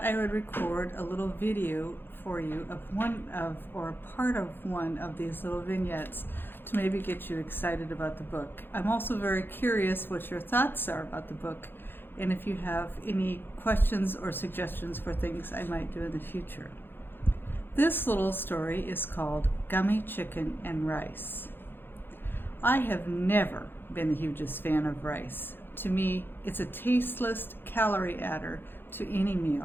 I would record a little video for you of part of one of these little vignettes to maybe get you excited about the book. I'm also very curious what your thoughts are about the book and if you have any questions or suggestions for things I might do in the future. This little story is called Gummy Chicken and Rice. I have never been the hugest fan of rice. To me, it's a tasteless calorie adder to any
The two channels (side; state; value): right; late; 0.10 ms